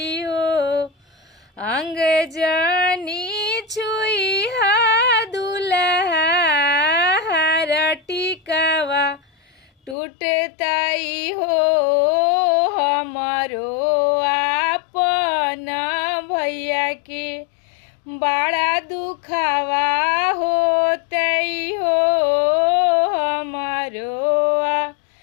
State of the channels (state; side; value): drops out; right; at 10.0 s